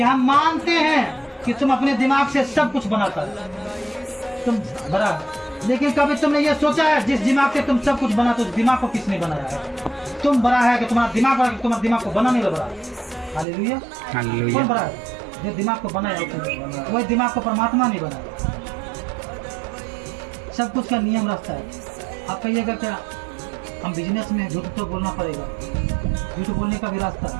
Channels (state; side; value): drops out; left; at 13.5 s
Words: हम मानते हैं कि तुम अपने दिमाग से सब कुछ बनाता है, तुम बड़ा, लेकिन कभी तुमने ये सोचा है जिस दिमाग से तुम सब कुछ बनाते हो, उस दिमाग को किसने बनाया है, तुम बड़ा है कि तुम्हारा दिमाग बड़ा, तुम्हारे दिमाग को बनाने वाला बड़ा। हालेलुया, कौन बड़ा है, जो दिमाग को बनाया, वही दिमाग को परमात्मा नहीं बनाया। सब कुछ का नियम रास्ता है। आप कहिएगा क्या हम बिजनेस में झूठ तो बोलना पड़ेगा, झूठ बोलने का भी रास्ता